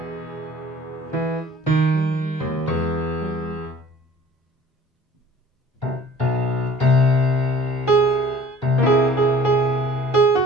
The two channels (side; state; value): both; normal; correlation 0.49